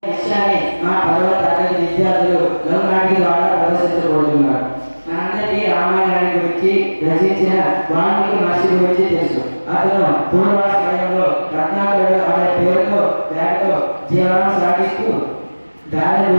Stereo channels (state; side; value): inverted; both; correlation -1.00